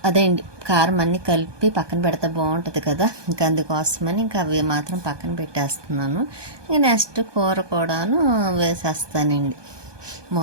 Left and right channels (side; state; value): left; late; 1.2 ms